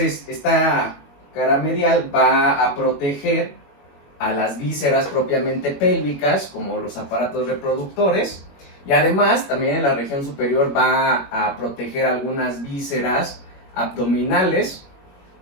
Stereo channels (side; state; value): right; late; 21 ms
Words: esta cara medial va a proteger a las vísceras propiamente pélvicas, como los aparatos reproductores, y además también en la región superior va a proteger algunas vísceras abdominales,